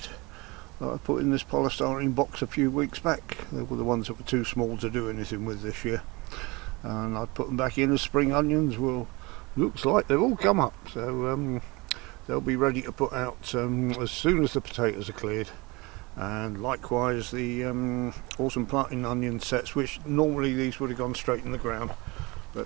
that I put in this polystyrene box a few weeks back. They were the ones that were too small to do anything with this year, and I put them back in as spring onions. Well, looks like they've all come up, so they'll be ready to put out as soon as the potatoes are cleared. And likewise the autumn planting onion sets, which normally these would have gone straight in the ground,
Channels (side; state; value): left; quieter; 24.9 dB